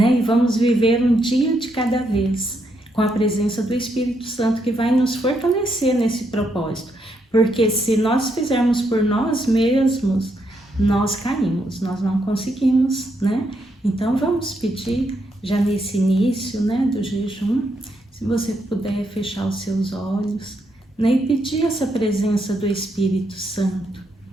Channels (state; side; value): normal; both; correlation 0.78